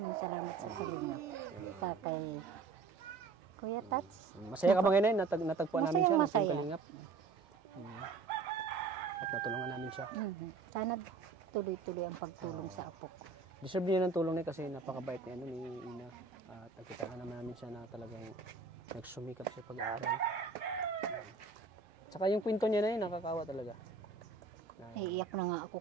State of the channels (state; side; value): quieter; left; 4.2 dB